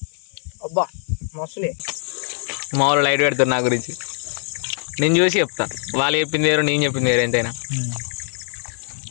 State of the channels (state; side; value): silent; right; 64 dB below the other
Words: అబ్బా మస్తులే మామూలు లైట్ పెడతారు నా గురించి నేను చూసి చెప్తా వాళ్ళు చెప్పింది వేరు నేను చెప్పింది వేరు ఎంతైనా